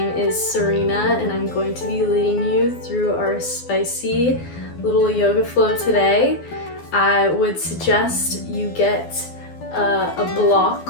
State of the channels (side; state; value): right; late; 12 ms